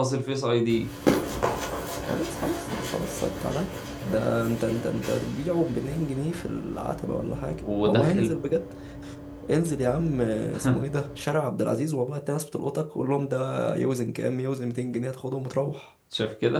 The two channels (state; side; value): identical; both; correlation 1.00